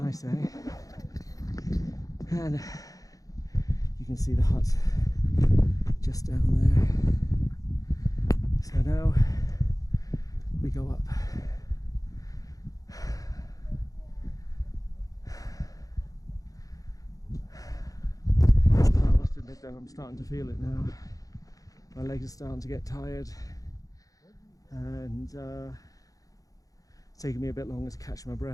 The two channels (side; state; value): right; late; 0.17 ms